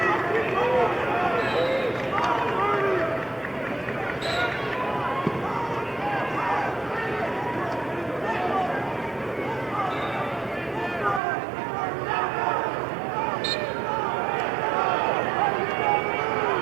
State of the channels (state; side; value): drops out; left; at 11.2 s